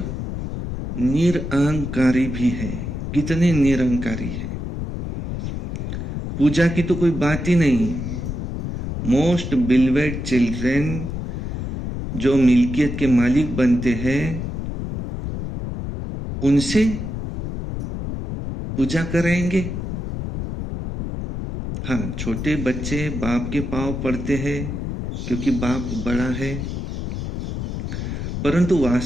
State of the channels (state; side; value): noise; left; rumble, 5 dB below the sound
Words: निरअहंकारी भी है। कितने निरअहंकारी है, पूजा की तो कोई बात ही नहीं। मोस्ट बिलवेड चिल्ड्रन, जो मिल्कियत के मालिक बनते हैं, उनसे पूजा करेंगे। हाँ, छोटे बच्चे बाप के पांव पड़ते हैं क्योंकि बाप बड़ा है, परंतु